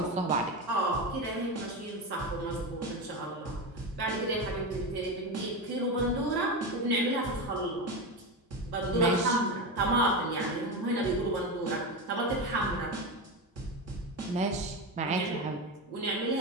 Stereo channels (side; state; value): both; normal; correlation 0.18